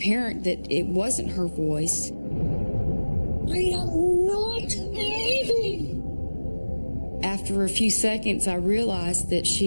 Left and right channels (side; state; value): both; inverted; correlation -1.00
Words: that it wasn't her voice. I am not leaving. After a few seconds, I realized that